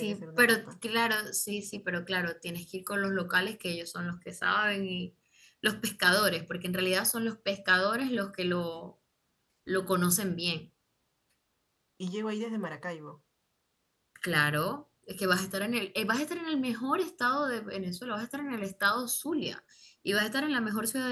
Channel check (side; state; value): both; identical; correlation 1.00